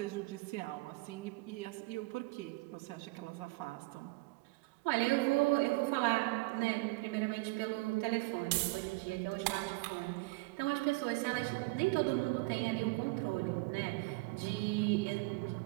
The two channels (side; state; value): left; quieter; 24.5 dB